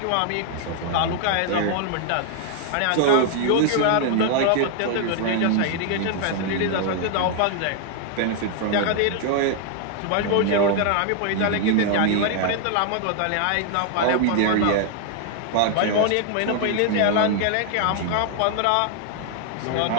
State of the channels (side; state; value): both; different; correlation 0.00